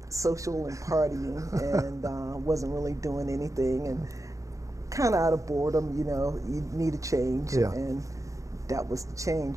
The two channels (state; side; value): late; left; 0.16 ms